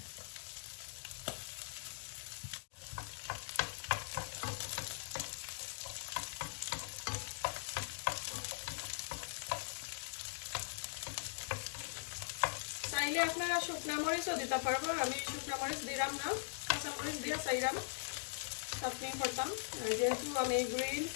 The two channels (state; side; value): silent; right; digital silence